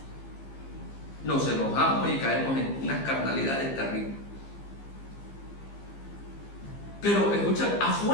Nos enojamos y caemos en unas carnalidades terribles. Pero escucha,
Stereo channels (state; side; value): late; right; 15 ms